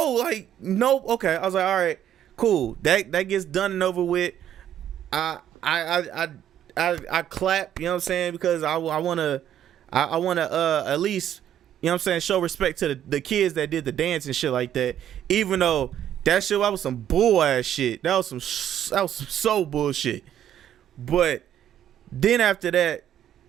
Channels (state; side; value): quieter; left; 10.6 dB